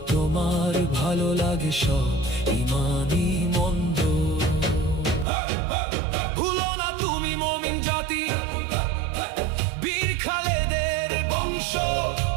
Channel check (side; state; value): left; drops out; at 5.2 s